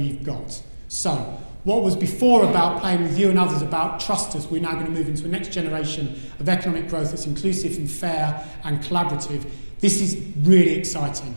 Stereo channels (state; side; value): inverted; both; correlation -1.00